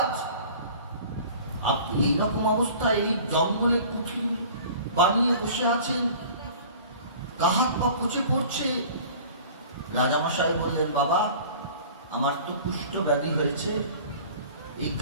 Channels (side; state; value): both; inverted; correlation -0.45